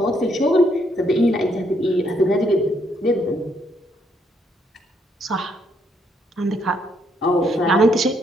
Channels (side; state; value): both; normal; correlation 0.73